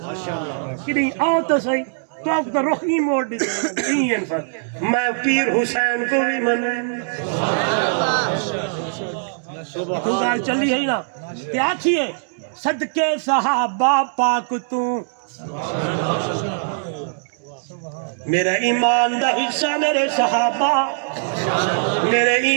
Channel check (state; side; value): silent; left; digital silence